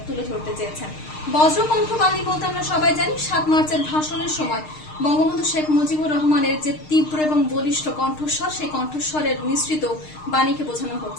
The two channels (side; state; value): right; late; 6.6 ms